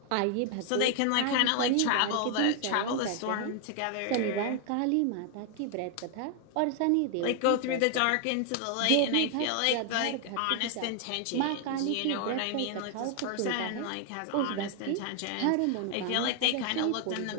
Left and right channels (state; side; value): different; both; correlation 0.00